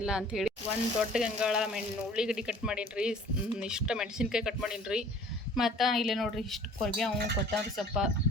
ಅಂಥೇಳಿ. ಒಂದು ದೊಡ್ಡ ಗಂಗಾಳ ಉಳ್ಳಿಗಡ್ಡಿ ಕಟ್ ಮಾಡೀನಿ ರೀ. ಇಷ್ಟು ಮೆಣಸಿನ್ಕಾಯಿ ಕಟ್ ಮಾಡೀನಿ ರೀ. ಮತ್ತು ಇಲ್ಲಿ ನೋಡ್ರಿ ಇಷ್ಟು ಕೊರಿಬೇವು, ಕೊತ್ತಂಬರಿ ಸೊಪ್ಪ,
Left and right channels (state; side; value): normal; both; correlation 0.50